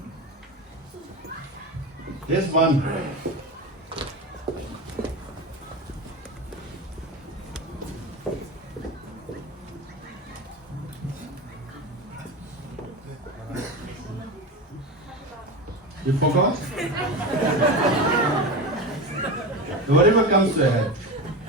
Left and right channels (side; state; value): both; normal; correlation 0.24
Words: There's one. You forgot? Whatever comes to your head.